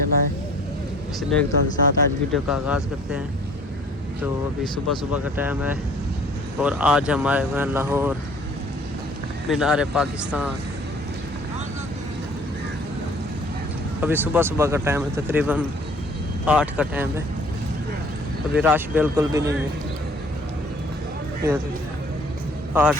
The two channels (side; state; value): both; normal; correlation 0.53